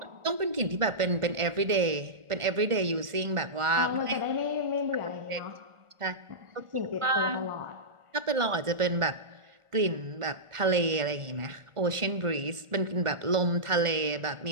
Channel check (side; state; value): left; late; 1.4 ms